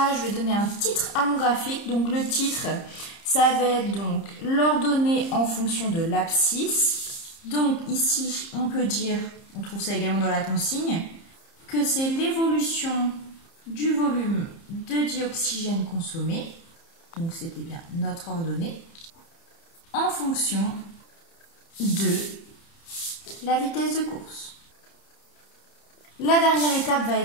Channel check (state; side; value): late; right; 30 ms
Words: je vais donner un titre à mon graphique. Donc le titre, ça va être donc l'ordonnée en fonction de l'abscisse. Donc ici, on peut dire, on trouve ça également dans la consigne, que c'est l'évolution du volume de dioxygène consommé. Donc c'était bien notre ordonnée en fonction de la vitesse de course. La dernière étape va